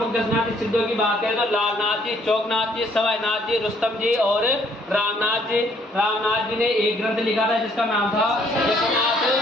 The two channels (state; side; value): normal; both; correlation 0.64